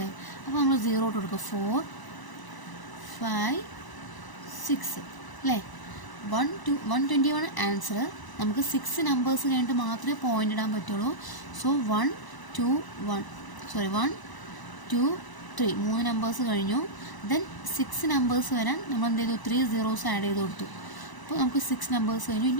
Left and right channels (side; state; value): right; late; 1.0 ms